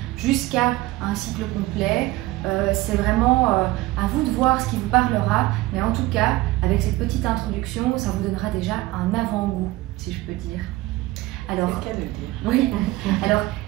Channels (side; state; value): left; quieter; 18.4 dB